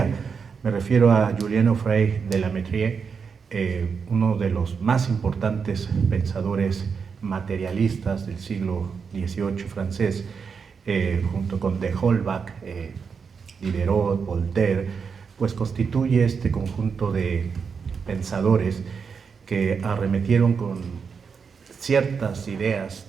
Me refiero a Julien Offray de La Mettrie, uno de los más importantes pensadores materialistas del siglo XVIII francés, junto con de Holbach, Diderot, Voltaire, pues constituye este conjunto de pensadores que arremetieron con ciertas ideas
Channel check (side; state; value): left; quieter; 5.9 dB